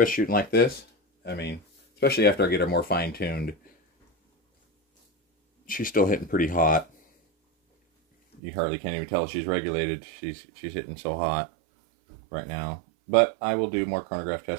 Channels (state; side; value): drops out; left; at 8.4 s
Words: shooting like this, I mean, especially after I get her more fine-tuned, she's still hitting pretty hot. You hardly can't even tell she's regulated. She's hitting so hot right now. But I will do more chronograph